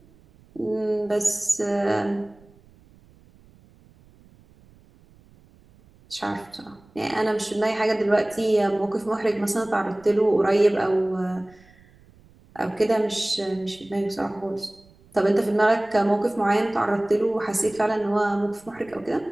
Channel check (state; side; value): noise; right; rumble, 28 dB below the sound